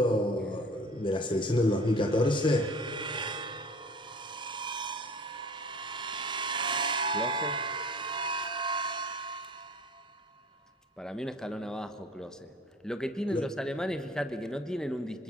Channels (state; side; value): normal; both; correlation 0.45